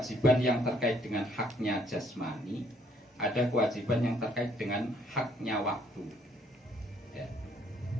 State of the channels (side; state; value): both; normal; correlation 0.65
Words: yang terkait dengan haknya jasmani, ada kewajiban yang terkait dengan haknya waktu, ya.